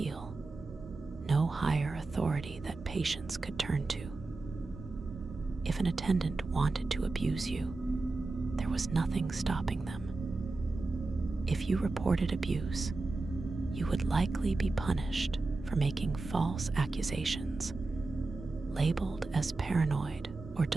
no higher authority that patients could turn to. If an attendant wanted to abuse you, there was nothing stopping them. If you reported abuse, you would likely be punished for making false accusations, labeled as paranoid or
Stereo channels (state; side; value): quieter; left; 3.4 dB